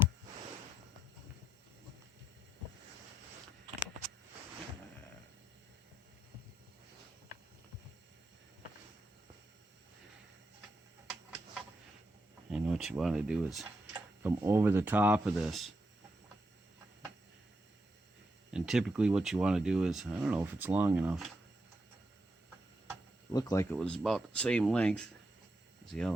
And what you want to do is come over the top of this. And typically what you want to do is, I don't know if it's long enough. Looked like it was about the same length as the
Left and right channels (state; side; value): normal; both; correlation 0.83